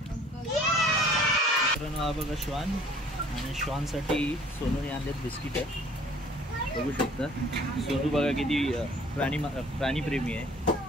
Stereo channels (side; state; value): both; normal; correlation 0.54